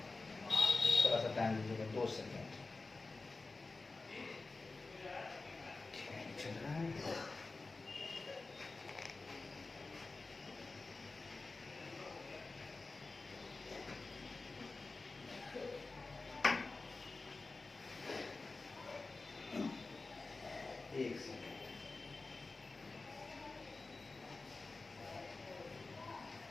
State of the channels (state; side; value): quieter; right; 3.6 dB